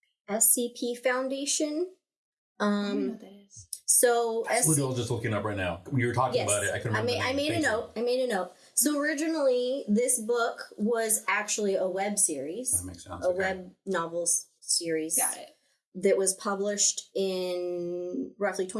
Foundation, I don't know what that is. so That's what I was just looking up right now. We were talking about it. I couldn't remember. I made a note. So originally, this book was actually a web series, That makes sense. a web novels series. Got it. That was published in roughly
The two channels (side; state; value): both; identical; correlation 1.00